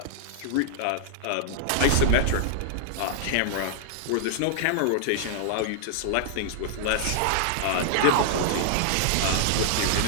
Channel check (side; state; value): both; different; correlation -0.01